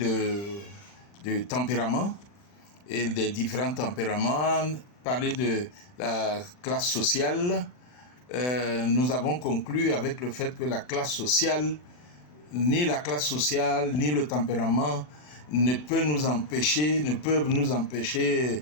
tempérament et des différents tempéraments, parler de la classe sociale, nous avons conclu avec le fait que la classe sociale, ni la classe sociale, ni le tempérament ne peuvent nous empêcher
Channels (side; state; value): right; late; 40 ms